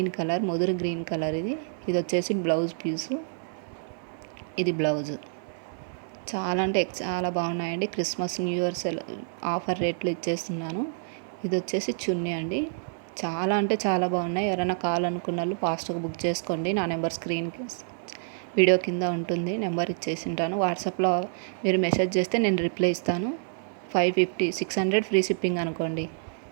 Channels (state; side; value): silent; left; 60 dB below the other